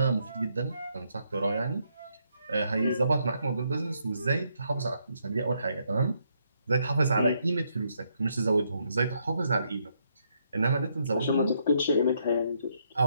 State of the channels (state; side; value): inverted; both; correlation -0.75